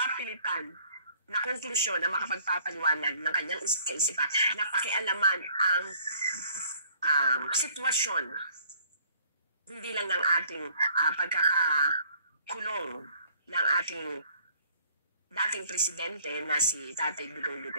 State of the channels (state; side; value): inverted; both; correlation -0.58